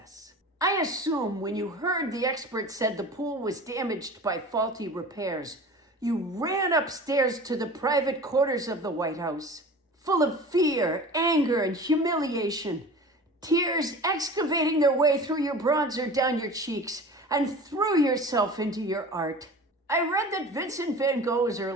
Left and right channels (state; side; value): normal; both; correlation 0.38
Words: I assume when you heard the expert said the pool was damaged by faulty repairs, you ran upstairs to the private quarters of the White House, full of fear, anger, and humiliation, tears excavating their way through your bronzer down your cheeks, and threw yourself into your art. I read that Vincent van Gogh's